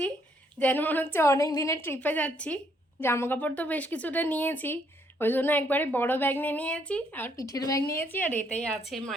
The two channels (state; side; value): normal; both; correlation 0.70